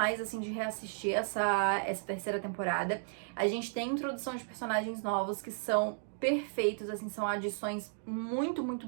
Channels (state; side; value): silent; left; digital silence